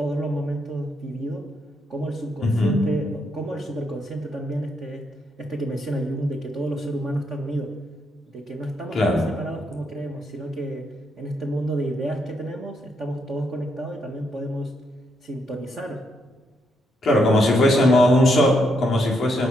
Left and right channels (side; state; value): both; normal; correlation 0.77